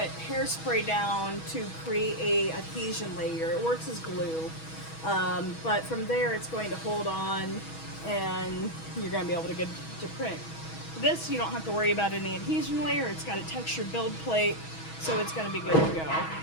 hairspray down to create a adhesion layer. It works as glue, but from there it's going to hold on and you're going to be able to get to print. This, you don't have to worry about any adhesion layer. It's got a textured build plate, so it's going to be good to go.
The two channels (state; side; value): late; right; 6.2 ms